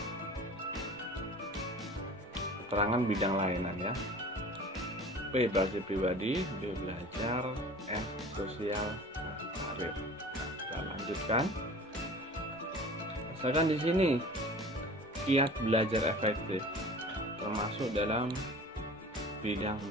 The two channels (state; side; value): normal; both; correlation 0.42